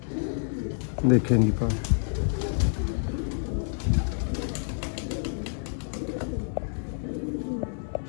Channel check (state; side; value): silent; right; digital silence